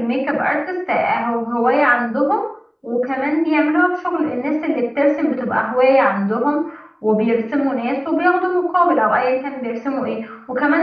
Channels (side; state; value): both; identical; correlation 1.00